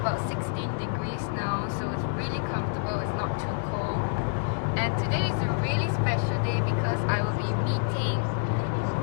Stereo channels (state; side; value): silent; right; digital silence